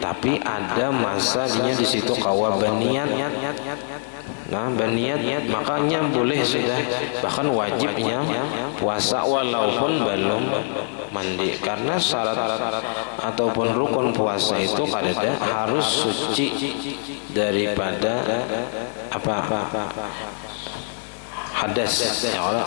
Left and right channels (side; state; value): right; silent; 63 dB below the other